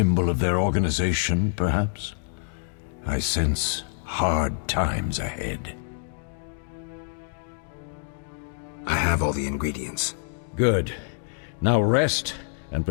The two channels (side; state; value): right; silent; digital silence